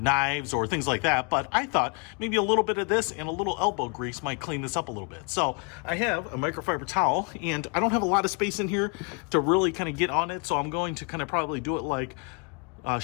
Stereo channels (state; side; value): quieter; right; 35.5 dB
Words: or things like that, but I thought maybe a little bit of this and a little elbow grease might clean this up a little bit. So I have a microfiber towel, and I don't have a lot of space in here to really kind of get on it, so I'm going to kind of probably do it like